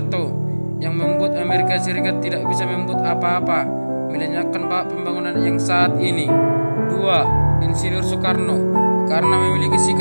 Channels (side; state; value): both; inverted; correlation -1.00